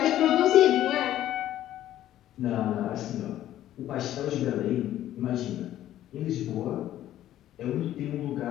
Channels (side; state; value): right; quieter; 12.8 dB